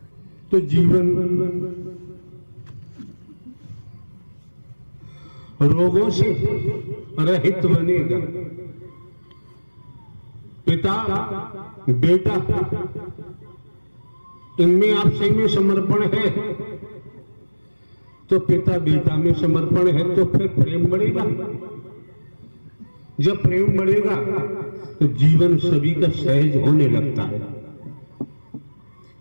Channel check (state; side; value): inverted; both; correlation -1.00